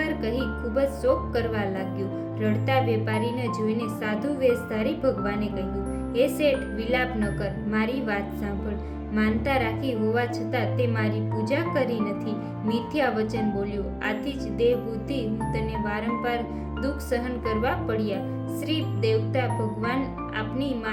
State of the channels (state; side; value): identical; both; correlation 1.00